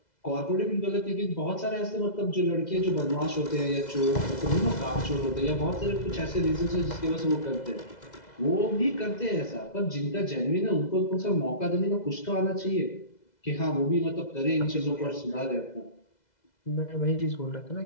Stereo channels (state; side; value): late; right; 2.0 ms